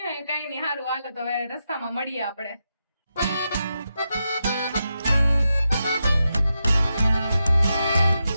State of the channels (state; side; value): inverted; both; correlation -0.87